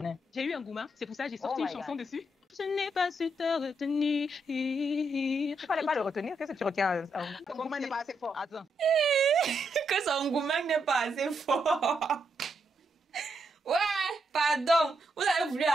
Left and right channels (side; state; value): both; normal; correlation 0.80